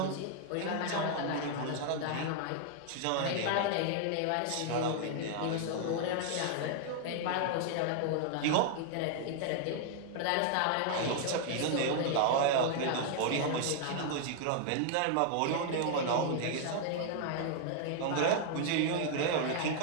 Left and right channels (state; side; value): different; both; correlation 0.00